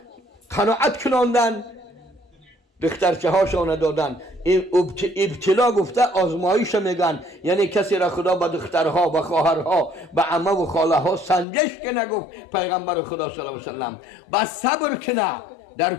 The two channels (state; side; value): drops out; right; at 11.5 s